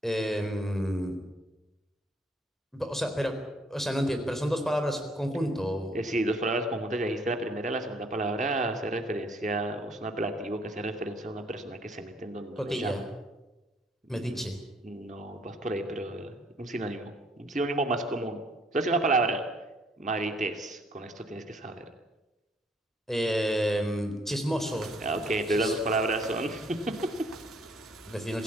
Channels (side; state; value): both; normal; correlation 0.63